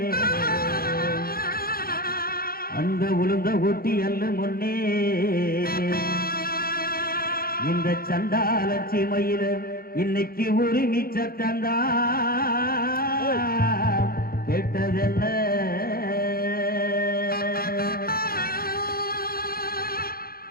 அந்த உளுந்த ஊட்டி அல்ல முன்னே இந்த சண்டால சீமையில இன்னைக்கு உரிமை சத்தந்தா கேட்டதென்ன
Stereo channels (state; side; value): late; right; 0.43 ms